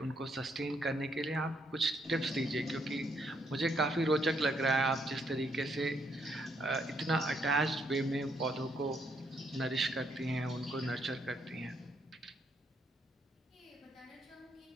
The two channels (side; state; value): both; normal; correlation 0.73